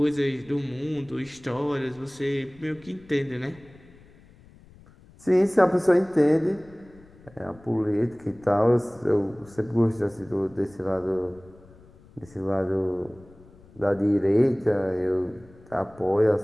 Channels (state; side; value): noise; left; rumble, 25 dB below the sound